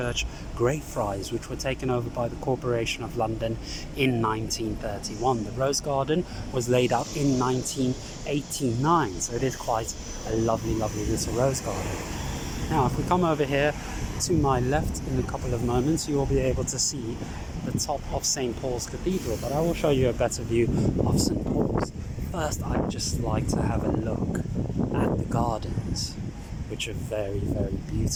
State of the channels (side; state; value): both; identical; correlation 1.00